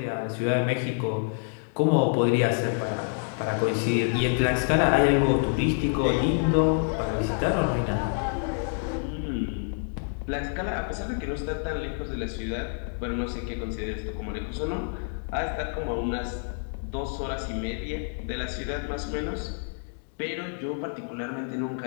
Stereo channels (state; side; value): silent; right; 60 dB below the other